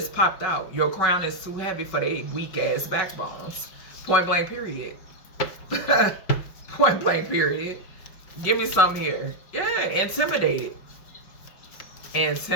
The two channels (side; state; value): right; late; 5.3 ms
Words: popped out. Your crown is too heavy for they weak ass backbones. Point blank period. Point blank period. Give me some here. Yeah, intimidated.